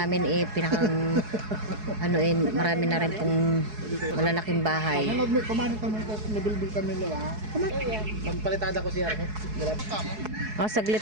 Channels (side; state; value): left; late; 4.7 ms